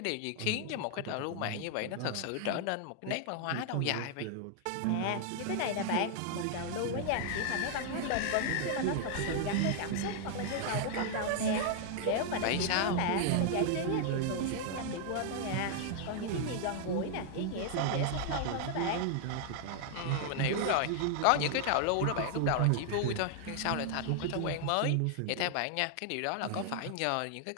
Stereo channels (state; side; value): different; both; correlation 0.00